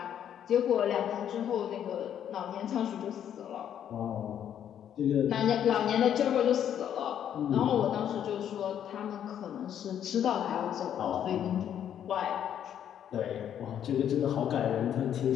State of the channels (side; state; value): right; quieter; 9.7 dB